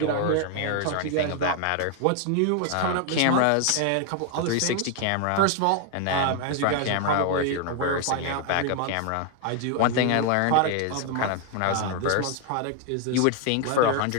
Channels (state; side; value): different; both; correlation 0.00